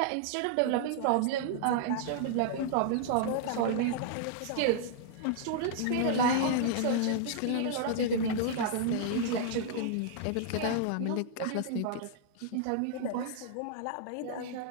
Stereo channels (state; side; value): different; both; correlation -0.01